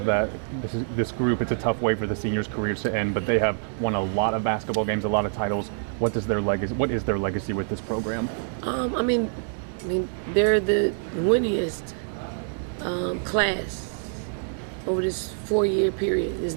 that, this group, it's a tough way for the seniors' careers to end, but they have won a lot of basketball games, a lot of titles. What is their legacy with this program? They're the winningest class over this 4-year period. There's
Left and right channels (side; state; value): left; silent; digital silence